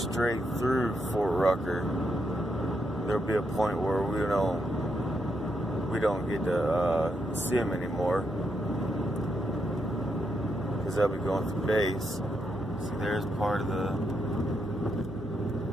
through Fort Rucker. There'll be a point where we don't get to see them anymore, because they'll be going through base. See, there's part of the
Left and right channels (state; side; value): normal; both; correlation 0.81